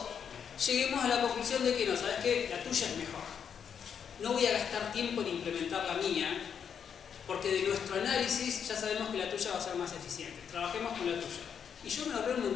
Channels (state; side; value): quieter; right; 7.6 dB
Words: lleguemos a la conclusión de que no, ¿sabes qué? La tuya es mejor. No voy a gastar tiempo en implementar la mía, porque de nuestro análisis ya sabemos que la tuya va a ser más eficiente. Trabajemos con la tuya. Y yo me ahorré un